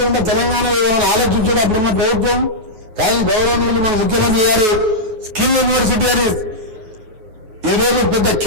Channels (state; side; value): late; left; 9.3 ms